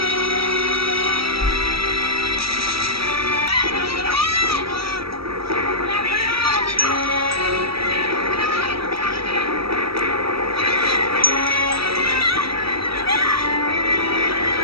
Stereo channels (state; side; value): late; left; 0.76 ms